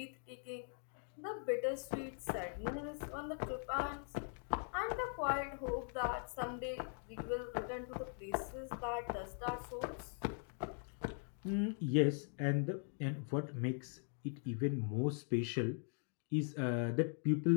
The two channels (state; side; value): silent; right; 50 dB below the other